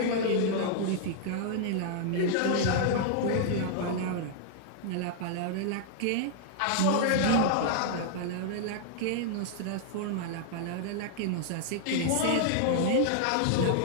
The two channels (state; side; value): different; both; correlation -0.01